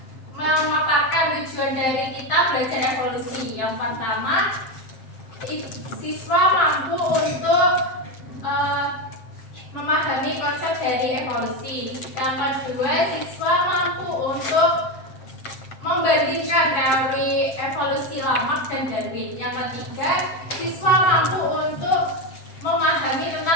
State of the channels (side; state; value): right; late; 7.6 ms